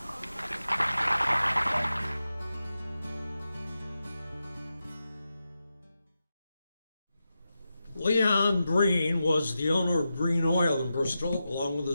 Leon Breen was the owner of Breen Oil in Bristol, along with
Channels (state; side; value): inverted; both; correlation -0.90